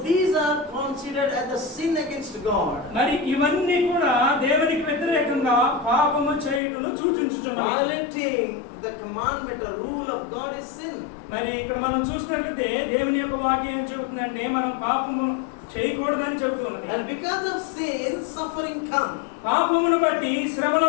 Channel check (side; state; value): right; drops out; at 6.6 s